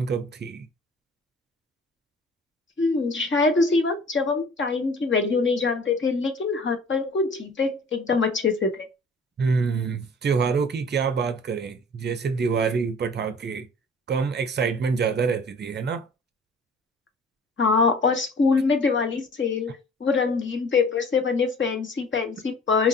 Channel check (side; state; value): both; normal; correlation 0.48